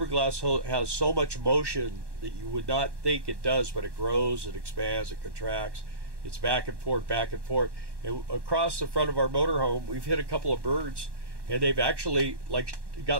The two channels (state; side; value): late; left; 1.1 ms